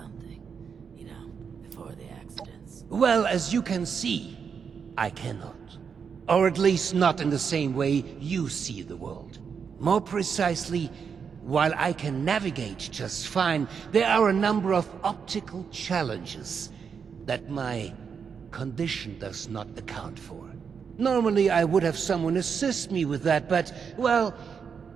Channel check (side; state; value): left; quieter; 6.4 dB